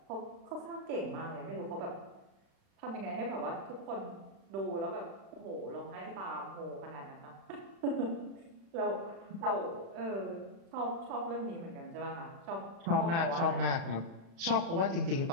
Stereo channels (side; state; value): left; late; 36 ms